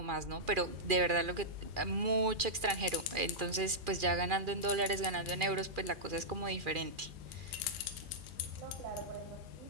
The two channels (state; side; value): late; left; 2.4 ms